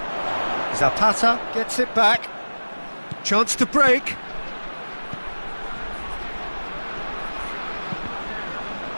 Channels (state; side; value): inverted; both; correlation -1.00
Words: Zapata gets it back. Chance to break.